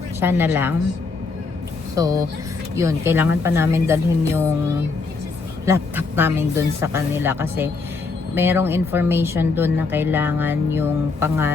siya na lang. So, yun, kailangan pa namin dalhin yung laptop namin dun sa kanila kasi merong information dun na kailangan yung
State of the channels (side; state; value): right; quieter; 4.1 dB